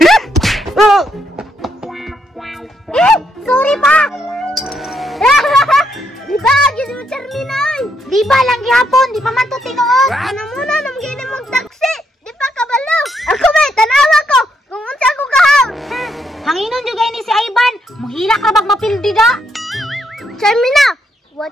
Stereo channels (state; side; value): normal; both; correlation 0.76